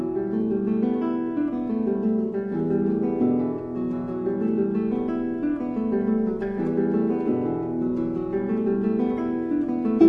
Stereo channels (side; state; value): both; identical; correlation 1.00